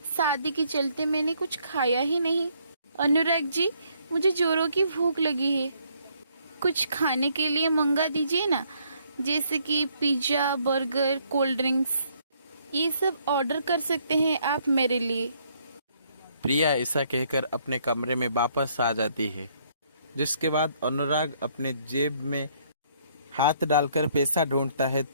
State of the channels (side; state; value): both; inverted; correlation -0.68